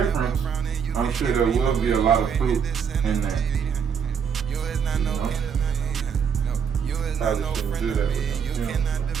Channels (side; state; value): left; quieter; 7.1 dB